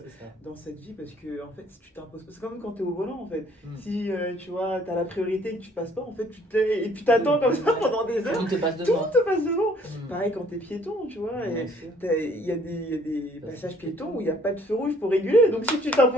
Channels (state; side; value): normal; both; correlation 0.60